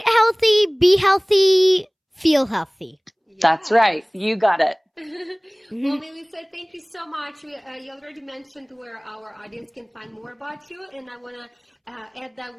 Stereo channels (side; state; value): both; identical; correlation 1.00